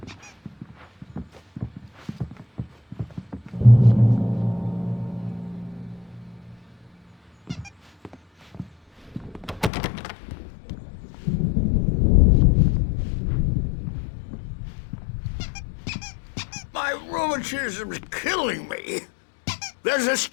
My rheumatism's killing me. There's a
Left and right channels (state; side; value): drops out; right; at 9.7 s